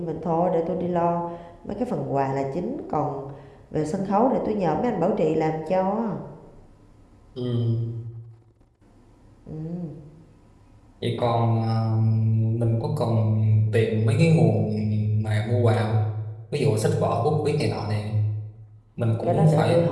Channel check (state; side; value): identical; both; correlation 1.00